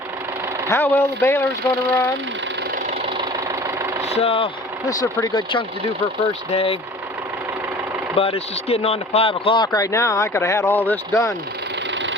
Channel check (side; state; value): both; normal; correlation 0.44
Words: how well the baler's gonna run. So this is a pretty good chunk to do for a first day. But it's just getting on to 5 o'clock right now. I could have had all this done.